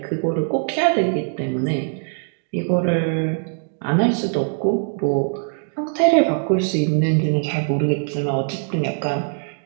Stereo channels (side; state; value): left; silent; 56 dB below the other